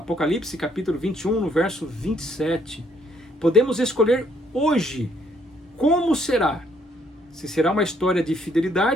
capítulo 21, no verso 27. Podemos escolher hoje como será. Se será uma história de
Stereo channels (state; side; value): normal; both; correlation 0.67